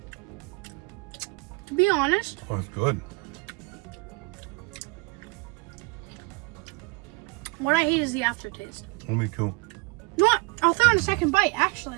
To be honest, Oh, it's good. what I hate is the aftertaste. Me too. You know what? I'll throw in a second bite, actually.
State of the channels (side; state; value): left; quieter; 29.0 dB